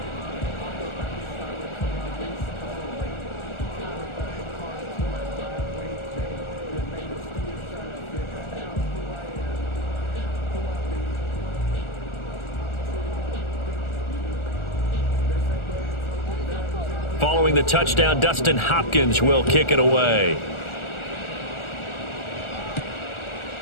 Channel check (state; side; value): late; right; 1.4 ms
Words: Following the touchdown, Dustin Hopkins will kick it away.